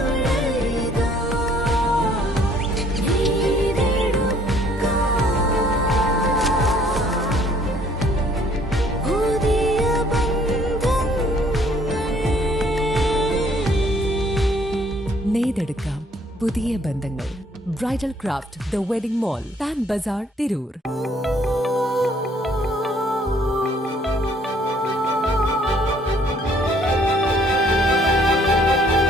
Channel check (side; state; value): both; normal; correlation 0.61